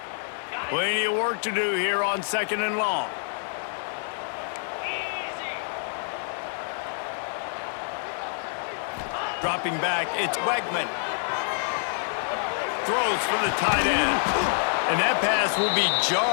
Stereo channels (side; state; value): right; silent; 60 dB below the other